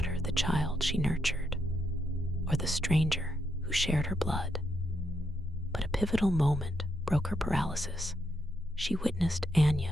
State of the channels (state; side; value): normal; both; correlation 0.80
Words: the child she nurtured, or the stranger who shared her blood? But a pivotal moment broke her paralysis. She witnessed